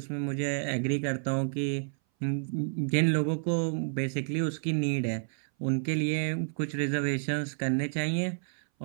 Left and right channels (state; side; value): silent; left; 58 dB below the other